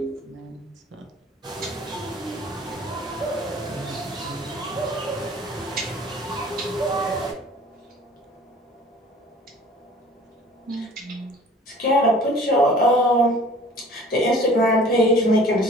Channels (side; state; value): both; normal; correlation 0.48